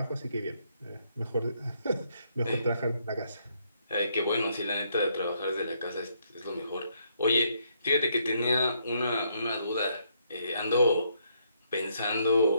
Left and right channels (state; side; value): inverted; both; correlation -0.73